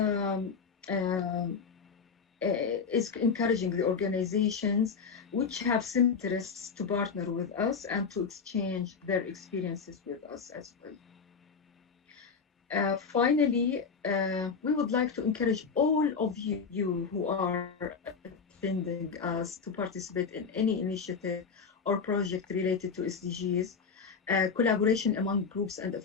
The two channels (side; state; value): right; quieter; 5.6 dB